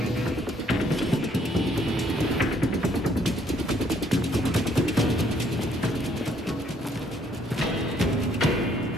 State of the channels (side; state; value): both; normal; correlation 0.66